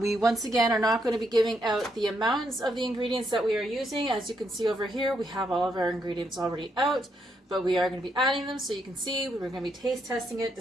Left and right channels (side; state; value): both; normal; correlation 0.77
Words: We once again are not going to be giving out the amounts of the ingredients that we are using. As you can see over here, we have all of our ingredients already out, but we are going to be adding them so you can see. We're going to be taste testing it to